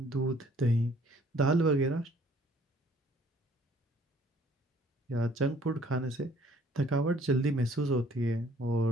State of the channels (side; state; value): both; normal; correlation 0.59